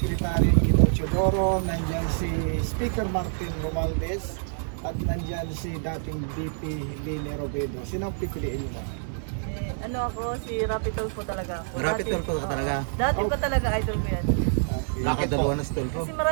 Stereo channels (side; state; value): left; silent; digital silence